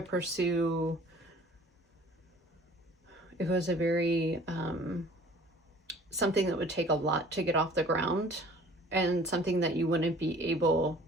pursue. It was a very something that would take a lot to get off the ground, and something that you wouldn't be able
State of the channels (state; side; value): normal; both; correlation 0.50